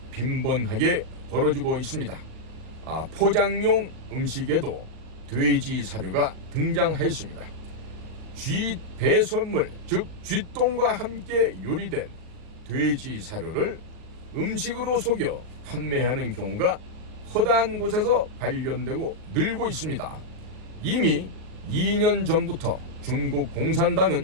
빈번하게 벌어지고 있습니다. 포장용 음식에도 돼지 사료가 등장하였습니다. 쥐 배설물, 즉 쥐똥과 함께 요리된 돼지 사료를 음식으로 속여 판매하는 경우가 허다한 곳에서 발견되고 늘고 있습니다. 이미 2년 전부터 중국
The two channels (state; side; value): late; left; 38 ms